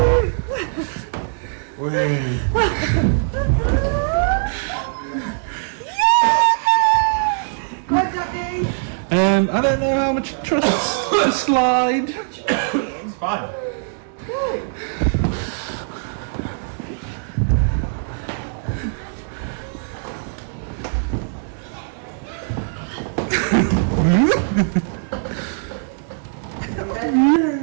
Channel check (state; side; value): silent; left; digital silence